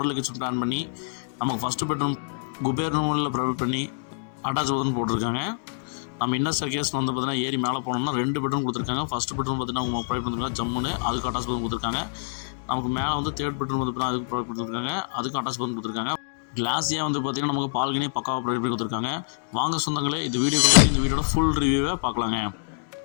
கிச்சன் பிளான் பண்ணி நமக்கு ஃபஸ்ட்டு பெட்ரூம் குபேர் ரூமில் ப்ரொவைட் பண்ணி அட்டாச் பாத்ரூம் போட்டிருக்காங்க. நம்ம இன்னர் ஸ்டேர்கேஸ் வந்து பார்த்தீங்கன்னா ஏறி மேலே போனோம்னா 2 பெட்ரூம் கொடுத்துருக்காங்க. ஃபஸ்ட் பெட்ரூம் பார்த்தீங்கன்னா அவங்க ப்ரொவைட் பண்ணிருக்காங்க ஜம்முன்னு, அதுக்கு அட்டாச் பாத்ரூம் கொடுத்துருக்காங்க. நமக்கு மேலே வந்து 3rd பெட்ரூம் வந்து பார்த்தீங்கன்னா அதுக்கு ப்ரொவைட் கொடுத்துருக்காங்க, அதுக்கு அட்டாச் பாத்ரூம் கொடுத்துருக்காங்க. கிளாஸியாக வந்து பார்த்தீங்கன்னா நமக்கு பால்கனி பக்காவாக ப்ரொவைட் பண்ணி கொடுத்துருக்காங்க. வாங்க சொந்தங்களே, இந்த வீடியோட ஃபுல் ரிவ்யூவை பார்க்கலாங்க.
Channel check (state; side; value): silent; right; digital silence